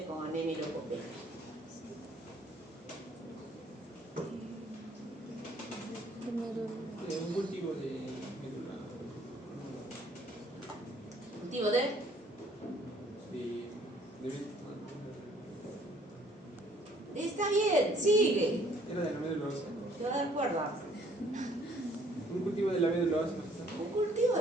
con anemia y leucopenia? Un cultivo de médula. ¿Cultivo de? De Está bien, sigue. era de la médula ósea. Te voy a dar cuerda. Un cultivo de la médula ósea. Un cultivo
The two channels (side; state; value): both; normal; correlation 0.60